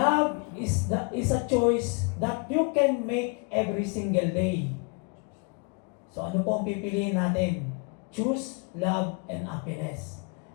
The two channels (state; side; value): quieter; right; 33.6 dB